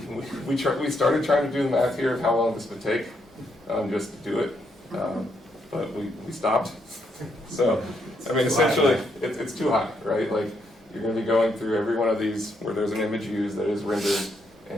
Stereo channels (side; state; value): both; normal; correlation 0.76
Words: we started trying to do the math here of how long this would take just to do it, but we stopped. So, I mean, essentially, it's too high, right? Like, you're going to be going through every one of these where there's an image used that is rendered